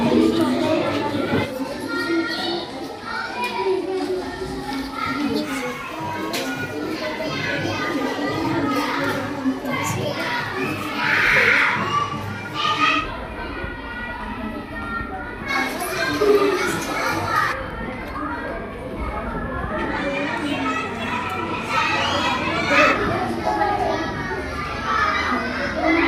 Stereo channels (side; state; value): both; identical; correlation 1.00